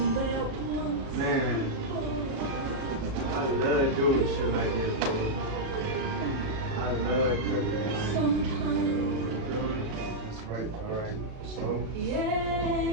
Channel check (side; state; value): left; late; 37 ms